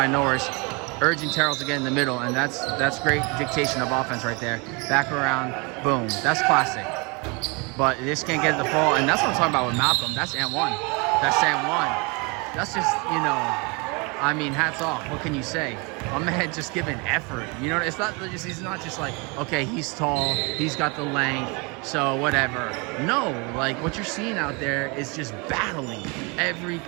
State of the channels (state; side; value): quieter; left; 29.9 dB